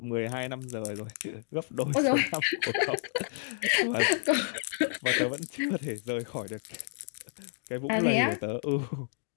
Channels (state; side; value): silent; right; digital silence